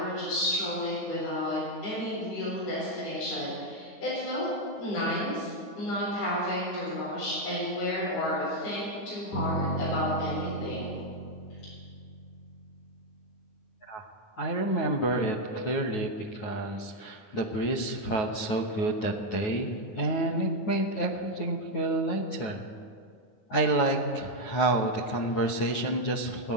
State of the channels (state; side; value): late; right; 9.3 ms